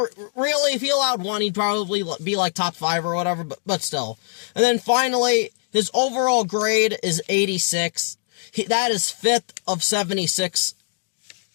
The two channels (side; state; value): right; silent; 64 dB below the other